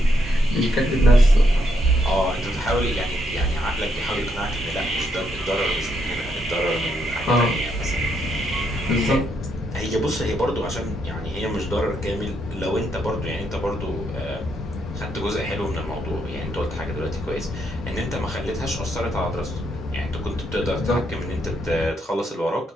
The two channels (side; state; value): both; normal; correlation 0.77